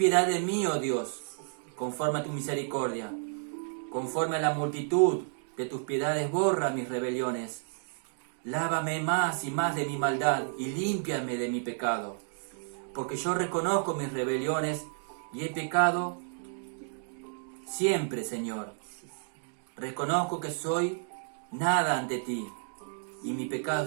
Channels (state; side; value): silent; left; digital silence